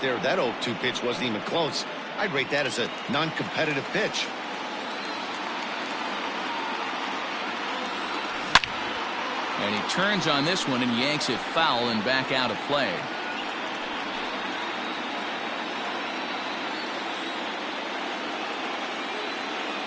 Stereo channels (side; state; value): both; identical; correlation 1.00